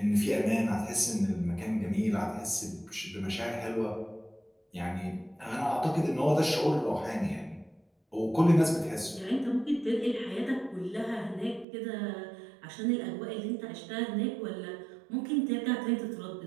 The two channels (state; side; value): drops out; left; at 11.7 s